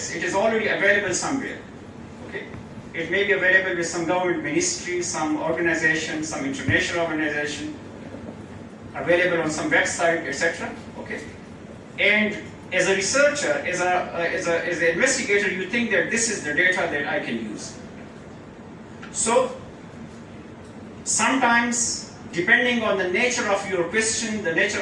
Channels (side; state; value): both; identical; correlation 1.00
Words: It is already available somewhere. Okay? It may be available with some government ministry, some organization, some international organization, available on some website, etc. Okay? And as a researcher, as an investigator, you think that this is the data that I can use. So sometimes, depending on the nature of your question, the